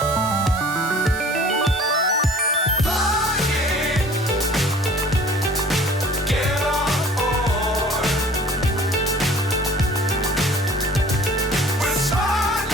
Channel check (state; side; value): normal; both; correlation 0.48